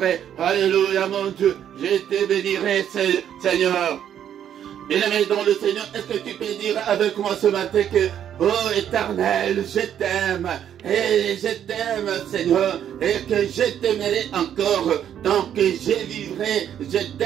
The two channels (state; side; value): quieter; left; 9.8 dB